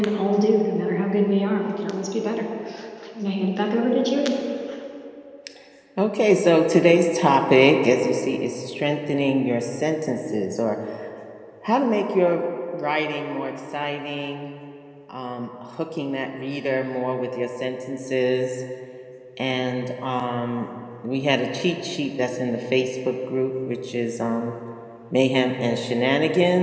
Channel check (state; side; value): identical; both; correlation 1.00